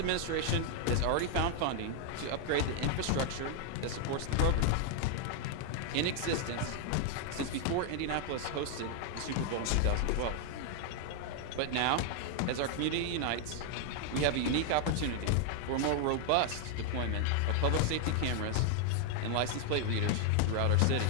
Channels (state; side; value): different; both; correlation 0.00